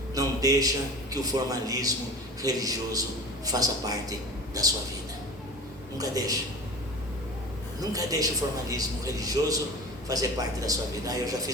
não deixa que o formalismo religioso faça parte da sua vida. Nunca deixa. Nunca deixa o formalismo religioso fazer parte da sua vida. Eu já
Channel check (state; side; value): normal; both; correlation 0.36